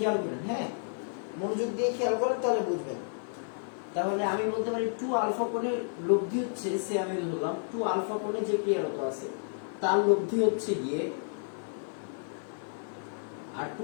করেন, হ্যাঁ মনোযোগ দিয়ে খেয়াল করেন তাহলে বুঝবেন। তাহলে আমি বলতে পারি 2 আলফা কোণের লব্ধি হচ্ছে, সে আমি ধরলাম 2 আলফা কোণে যে ক্রিয়ারত আছে তার লব্ধি হচ্ছে গিয়ে, আর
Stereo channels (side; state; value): right; silent; 57 dB below the other